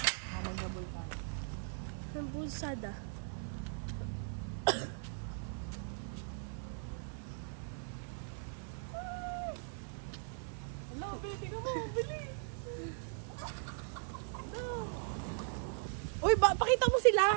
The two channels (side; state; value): left; silent; 52 dB below the other